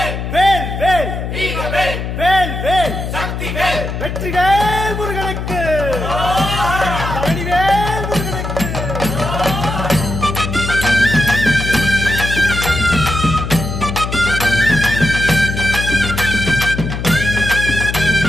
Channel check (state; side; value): noise; left; hum, 5 dB below the sound